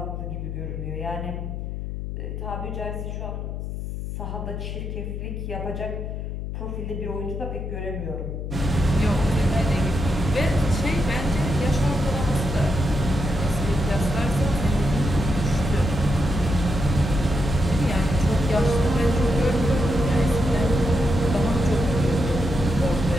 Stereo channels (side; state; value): left; noise; hum, 5 dB below the sound